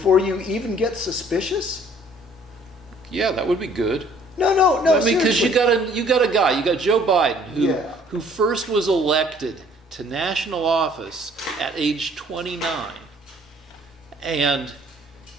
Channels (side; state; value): both; normal; correlation 0.58